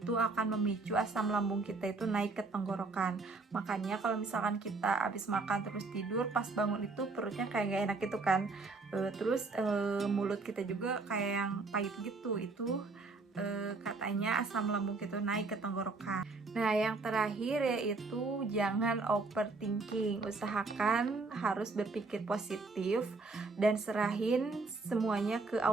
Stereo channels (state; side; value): quieter; left; 3.8 dB